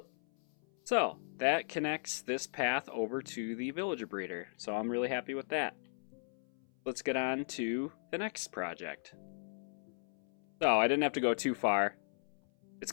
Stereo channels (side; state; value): right; silent; 53 dB below the other